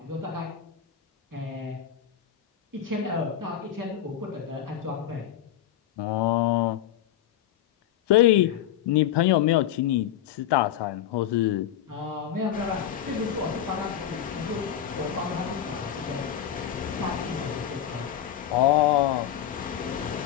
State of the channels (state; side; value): quieter; right; 10.5 dB